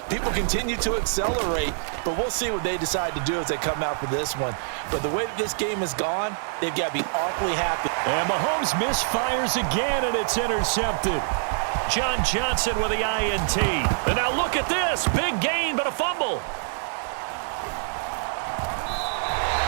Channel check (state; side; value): silent; left; 61 dB below the other